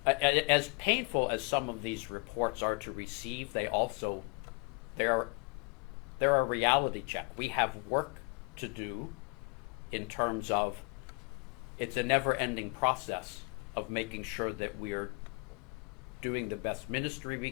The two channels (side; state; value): right; quieter; 32.3 dB